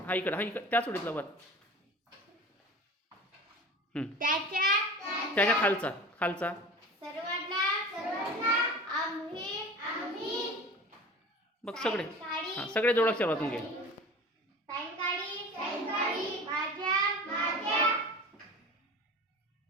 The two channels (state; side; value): normal; both; correlation 0.37